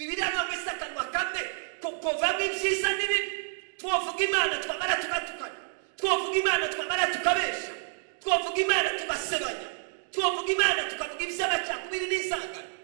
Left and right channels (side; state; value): left; silent; digital silence